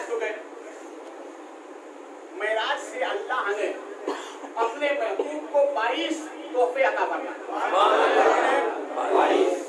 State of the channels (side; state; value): both; identical; correlation 1.00